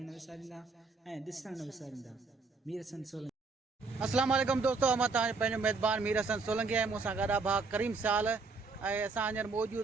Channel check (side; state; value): left; quieter; 4.1 dB